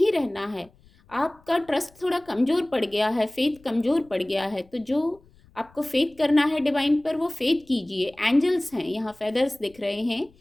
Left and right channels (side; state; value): left; noise; rumble, 29 dB below the sound